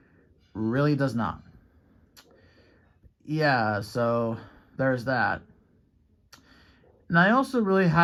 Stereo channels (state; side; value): identical; both; correlation 1.00